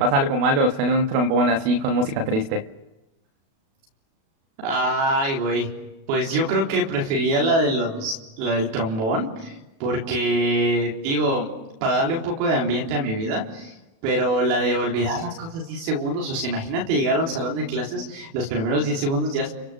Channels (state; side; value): late; left; 36 ms